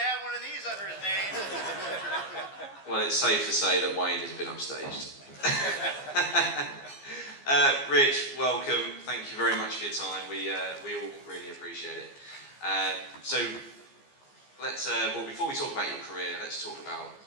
one of these under his name. Well, it's safe to say that Wayne has been upstaged. Rich, welcome. Thank you very much for your time. We all really appreciate it. So let's well, before we talk about your career, let's talk about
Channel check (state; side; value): late; right; 15 ms